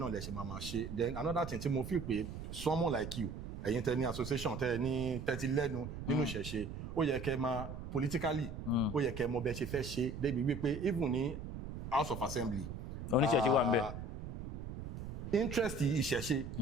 lẹ ṣe máa ṣe then another thing tí mo feel pé someone like you ẹ̀yin tẹ ní association tẹ ní tẹ́tí lẹ́nu nínú ìṣẹ̀ṣe ó yẹ kẹ́ máa politically ó yẹ kẹ́ mọ bẹ́ẹ̀ ṣe fẹ́ ṣe débi wípé even ní House of Assembly oníṣẹ̀ṣe wà ń bẹ̀ interest ìṣẹ̀ṣe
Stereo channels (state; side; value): noise; right; rumble, 8 dB below the sound